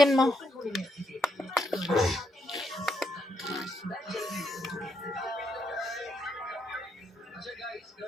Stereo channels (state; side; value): normal; both; correlation 0.78